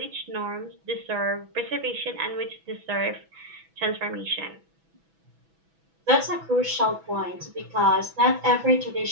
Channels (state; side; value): late; left; 6.1 ms